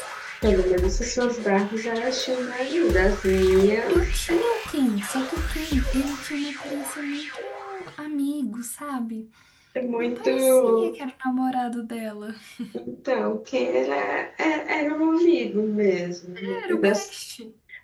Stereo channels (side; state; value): both; identical; correlation 1.00